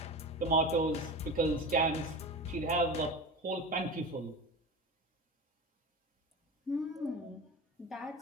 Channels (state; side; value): normal; both; correlation 0.28